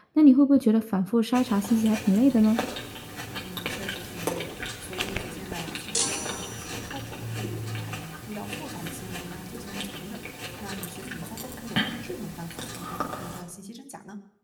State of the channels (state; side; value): identical; both; correlation 1.00